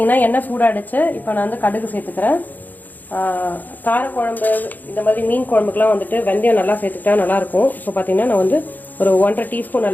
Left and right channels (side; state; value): right; late; 0.084 ms